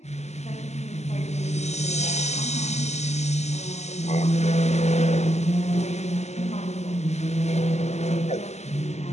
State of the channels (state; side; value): late; right; 0.33 ms